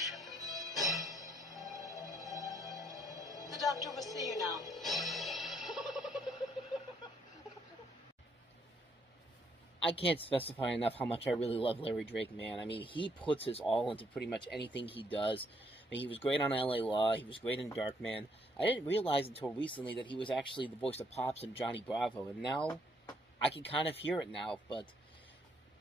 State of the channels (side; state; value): both; normal; correlation 0.70